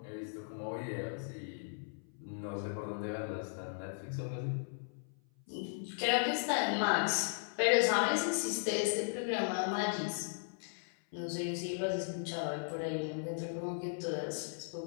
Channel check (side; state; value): right; silent; 53 dB below the other